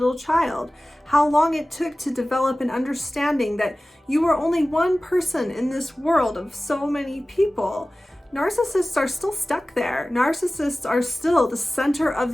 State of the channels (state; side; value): normal; both; correlation 0.97